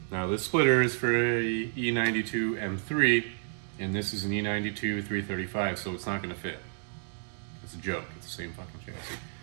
Now this splitter is for a E92 M3, and this is an E92 335, so it's not going to fit. It's a joke. It's the same fucking chassis.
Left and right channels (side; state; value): left; silent; digital silence